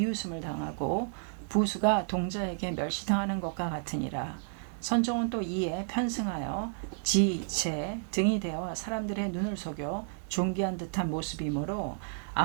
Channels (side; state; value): left; silent; digital silence